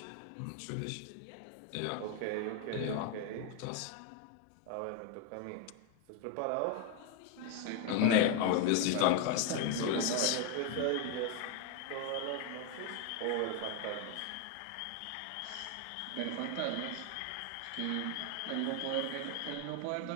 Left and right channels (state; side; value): different; both; correlation 0.01